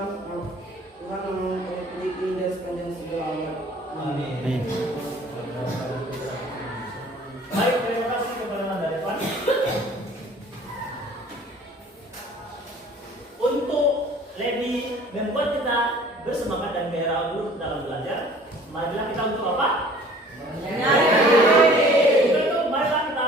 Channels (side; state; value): both; normal; correlation 0.50